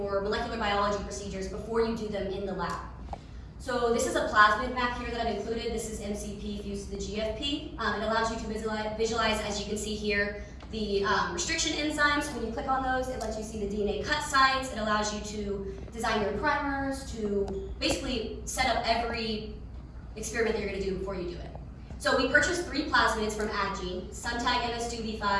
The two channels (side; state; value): both; identical; correlation 1.00